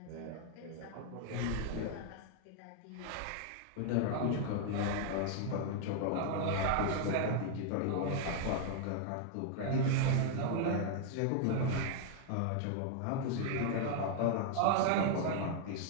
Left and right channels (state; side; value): different; both; correlation 0.00